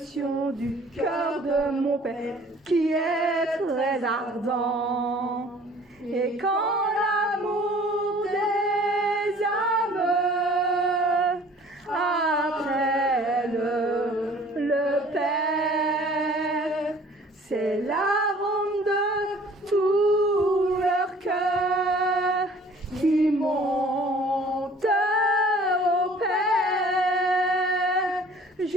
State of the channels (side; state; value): both; normal; correlation 0.52